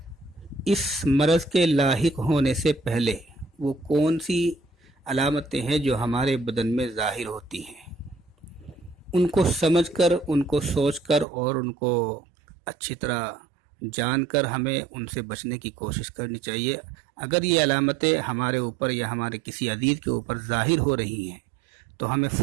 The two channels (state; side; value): drops out; left; at 11.2 s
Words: इस मर्ज़ के लाहिक होने से पहले वो कौन सी अलामतें हैं जो हमारे बदन में ज़ाहिर होती हैं, उनको समझकर, उनको सोचकर और उनको अच्छी तरह जानकर हमें उनसे बचने की कोशिश करनी चाहिए। अगर ये अलामतें हमारे ऊपर या हमारे किसी अजीज़ के ऊपर ज़ाहिर हो रही हैं तो हमें